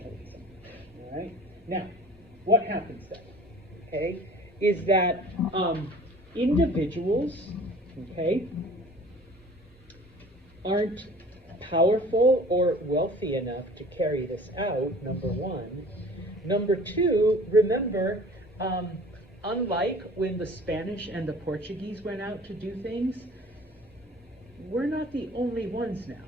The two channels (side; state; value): both; normal; correlation 0.46